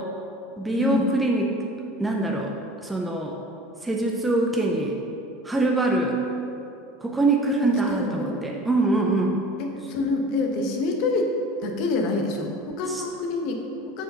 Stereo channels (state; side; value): normal; both; correlation 0.43